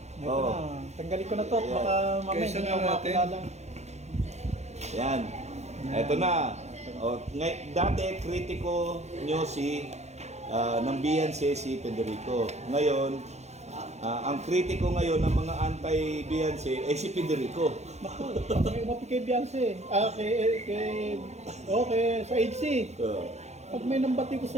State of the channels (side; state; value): left; late; 0.32 ms